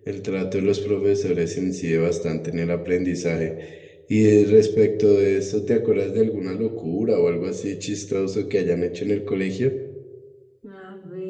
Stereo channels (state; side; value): identical; both; correlation 1.00